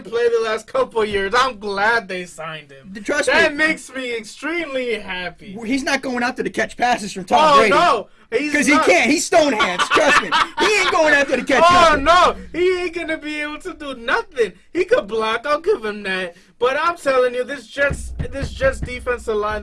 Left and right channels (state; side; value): identical; both; correlation 1.00